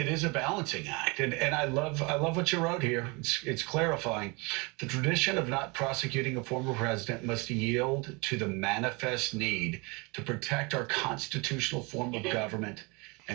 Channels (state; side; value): quieter; left; 28.1 dB